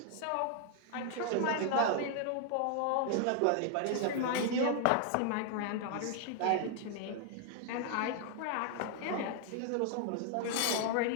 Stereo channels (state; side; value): different; both; correlation 0.00